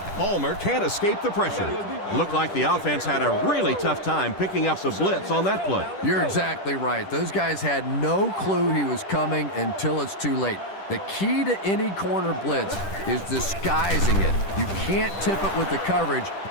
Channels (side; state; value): right; late; 10 ms